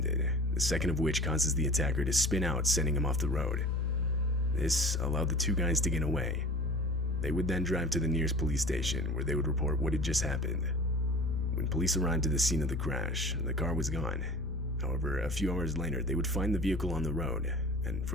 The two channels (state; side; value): normal; both; correlation 0.41